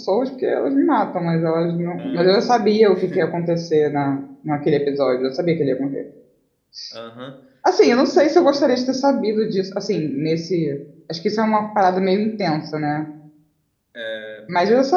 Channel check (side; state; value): both; identical; correlation 1.00